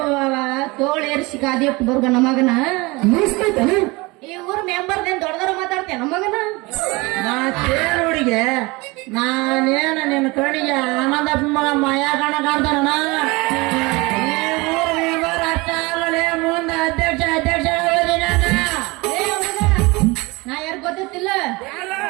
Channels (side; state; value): left; quieter; 24.3 dB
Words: ತೋಳೇರಿಸಿ ಕಾದಿಟ್ಟು ಬರ್ಗ ನಮಗನ ಮುಗಿಸ್ತೈತನ ಈ ಊರ್ ಮೆಂಬರ್ದೇನ್ ದೊಡ್ಡದವ್ರು ಮಾತಾಡ್ತೇನೆ ನಮಗನ ನಾ ಕೇಳುಡಿಗೆ ನಾನೇನ ನಿನ್ನ ಕಣ್ಣಿಗೆ ಆನಂದಪ್ಪ ಮಗ ಮಾಯಾ ಕಣ ಕಾಣ್ತಾನ ಈ ಊರ್ ಮೆಂಬರ್ ಅಷ್ಟ ಅಲ್ಲಲೇ ಮುಂದೆ ಅಧ್ಯಕ್ಷ ಆಗೋದಿ ನಾನು ಏ ಹುಡುಗ, ನಾ ಯಾರು ಗೊತ್ತಿಲ್ಲ